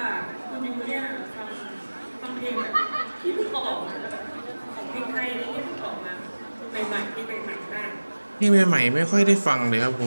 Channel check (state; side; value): inverted; both; correlation -1.00